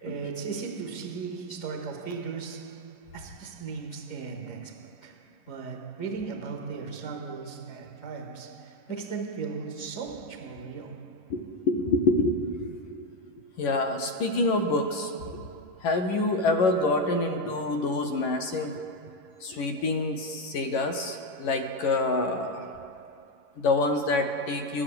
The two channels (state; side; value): late; right; 11 ms